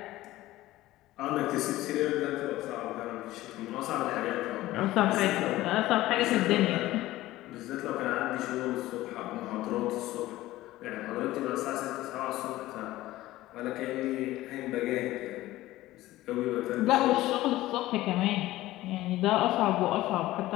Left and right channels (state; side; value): quieter; right; 16.5 dB